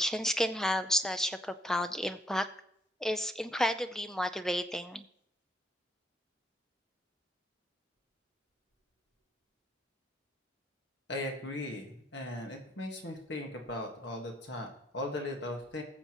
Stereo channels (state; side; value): normal; both; correlation 0.70